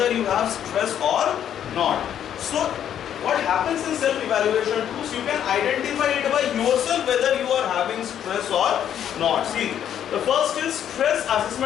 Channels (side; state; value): right; quieter; 9.8 dB